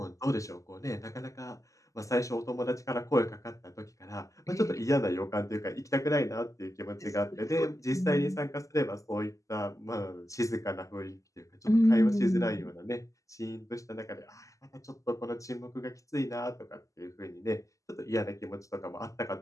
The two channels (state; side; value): late; right; 0.16 ms